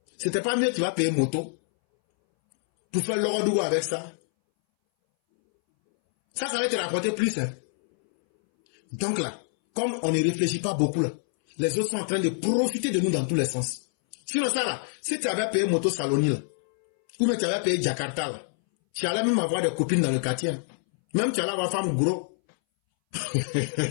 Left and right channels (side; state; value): right; silent; 61 dB below the other